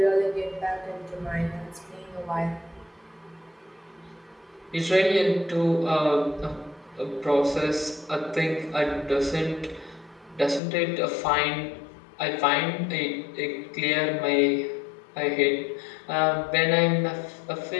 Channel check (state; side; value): drops out; right; at 10.6 s